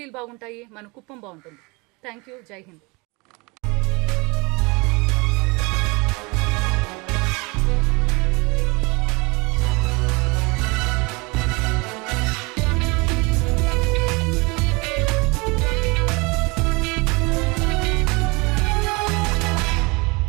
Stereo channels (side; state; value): left; quieter; 27.0 dB